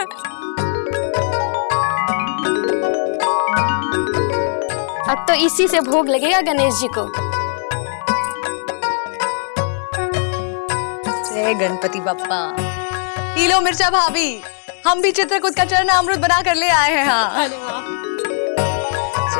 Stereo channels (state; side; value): silent; right; 67 dB below the other